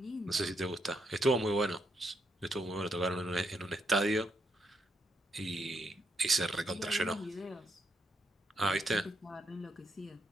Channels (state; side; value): normal; both; correlation 0.78